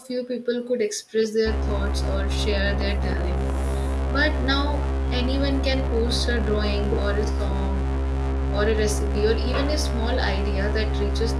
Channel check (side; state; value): both; identical; correlation 1.00